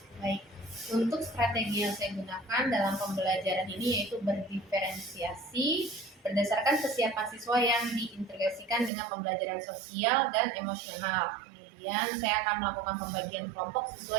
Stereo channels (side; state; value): left; drops out; at 8.9 s